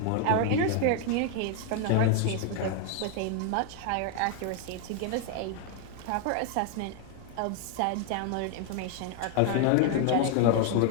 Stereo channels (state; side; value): different; both; correlation 0.01